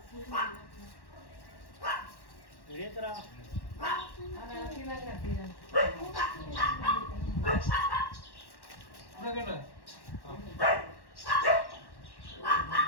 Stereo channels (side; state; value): right; late; 1.1 ms